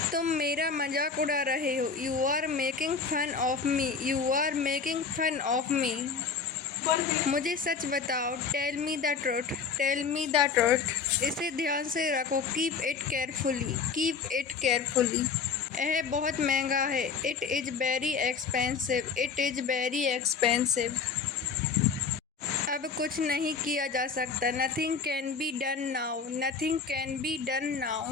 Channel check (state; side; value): quieter; right; 5.3 dB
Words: तुम मेरा मजाक उड़ा रहे हो। You are making fun of me. You are making fun of me. मुझे सच बताओ। Tell me the truth. Tell me the truth. इसे ध्यान से रखो। Keep it carefully. Keep it carefully. यह बहुत महंगा है। It is very expensive. It is very expensive. अब कुछ नहीं किया जा सकता। Nothing can be done now. Nothing can be done